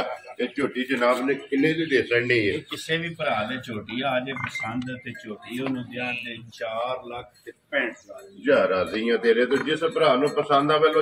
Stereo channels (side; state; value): both; identical; correlation 1.00